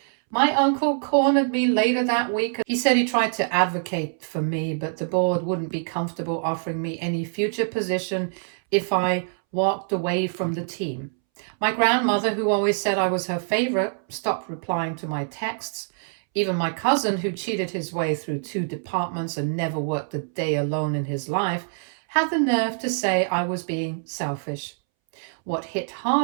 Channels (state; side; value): silent; left; 62 dB below the other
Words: My uncle cornered me later that week. He said he tried to advocate for me, but the board wouldn't be comfortable offering me any future position if I walked away from the team. My grandmother, who always said I was her favorite, stopped replying to my texts. Even my cousin, who cheated his way through 2 departments and never worked a day alone in his life, had the nerve to say I was being selfish. What hit